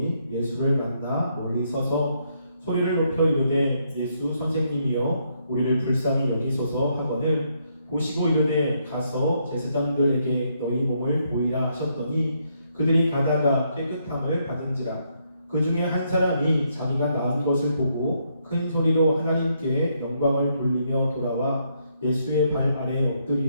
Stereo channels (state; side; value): inverted; both; correlation -0.75